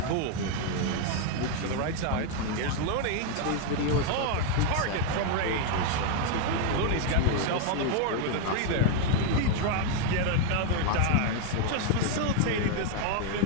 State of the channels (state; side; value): different; both; correlation 0.01